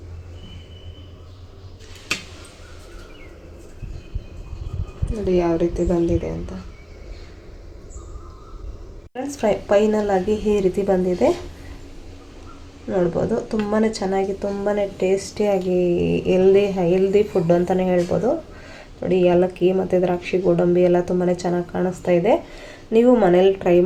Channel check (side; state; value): both; identical; correlation 1.00